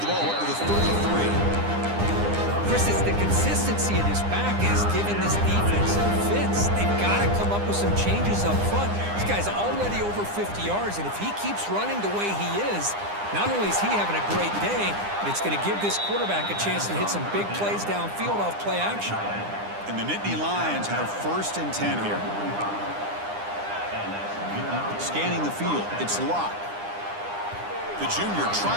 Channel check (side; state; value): left; late; 9.9 ms